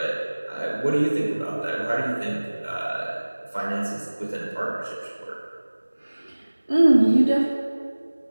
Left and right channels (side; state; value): both; inverted; correlation -1.00